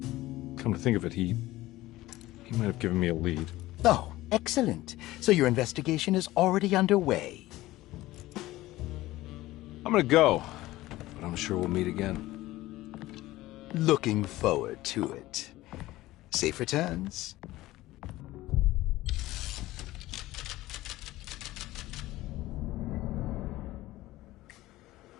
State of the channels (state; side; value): quieter; right; 17.2 dB